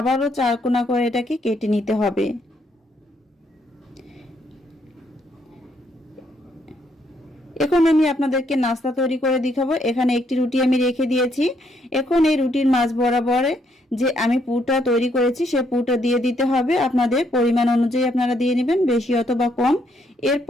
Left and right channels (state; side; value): normal; both; correlation 0.73